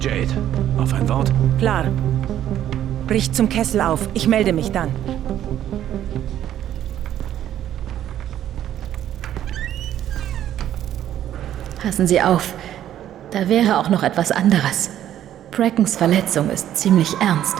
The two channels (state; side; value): quieter; left; 11.4 dB